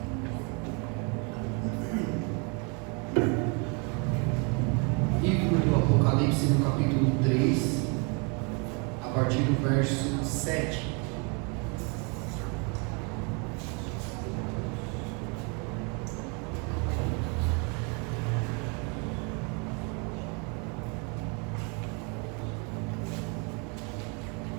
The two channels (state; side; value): quieter; left; 33.4 dB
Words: Apocalipse no capítulo 3, a partir do verso 7.